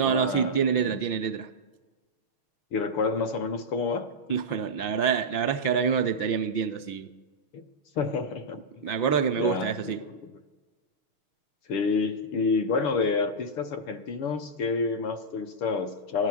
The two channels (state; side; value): late; right; 5.9 ms